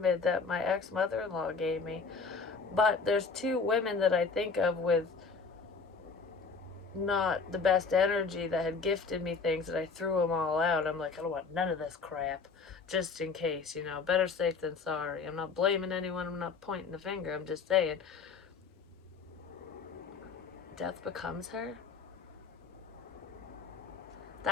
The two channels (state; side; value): quieter; right; 4.9 dB